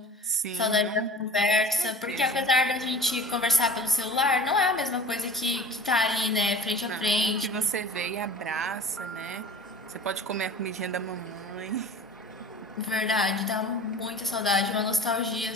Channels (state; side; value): normal; both; correlation 0.40